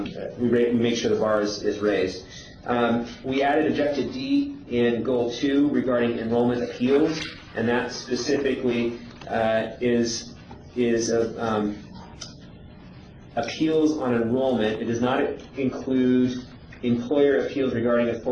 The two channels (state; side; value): identical; both; correlation 1.00